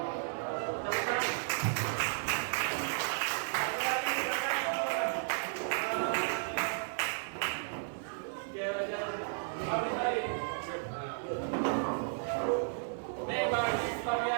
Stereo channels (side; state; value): left; silent; digital silence